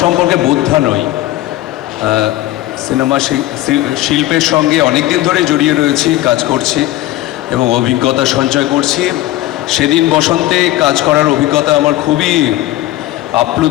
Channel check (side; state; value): right; quieter; 15.7 dB